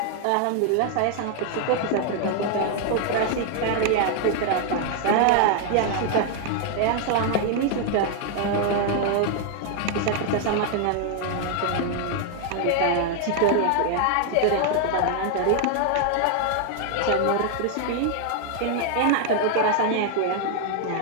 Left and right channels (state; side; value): different; both; correlation 0.00